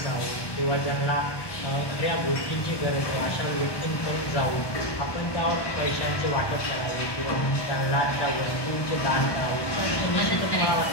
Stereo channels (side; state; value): right; late; 1.1 ms